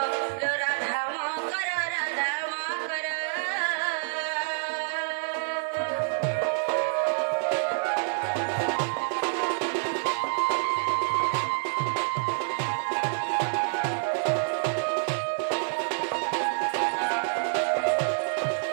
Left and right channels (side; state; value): left; silent; digital silence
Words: রাধা মা কর রাধা মা কর